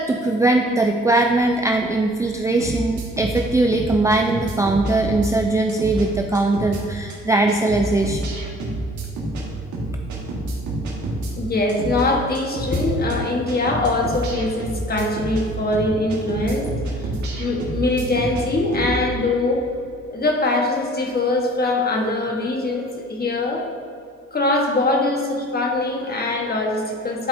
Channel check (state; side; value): normal; both; correlation 0.51